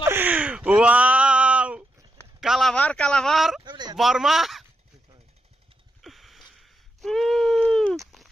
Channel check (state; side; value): normal; both; correlation 0.84